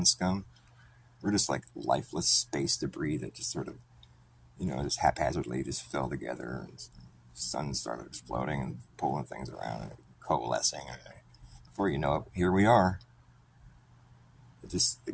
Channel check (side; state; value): both; identical; correlation 1.00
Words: scum. We're just like lifeless space debris that just sort of, just haphazardly just fell together, and the sun started exploding and pulling things around and coalescing. And before you know it, here we are. We just